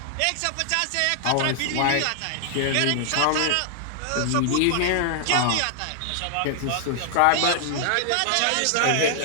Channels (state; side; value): different; both; correlation 0.00